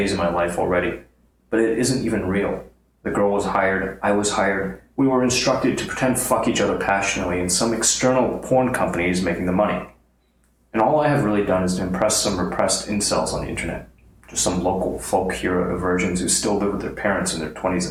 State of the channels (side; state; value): both; identical; correlation 1.00